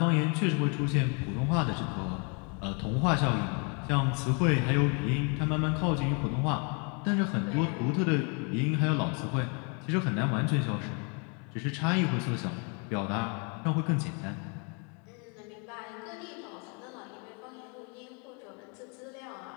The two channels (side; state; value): right; quieter; 35.3 dB